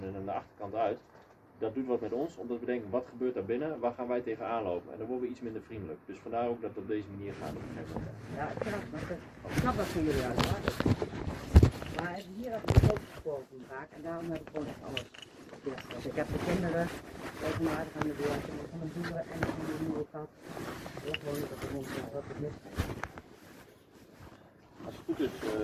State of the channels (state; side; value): identical; both; correlation 1.00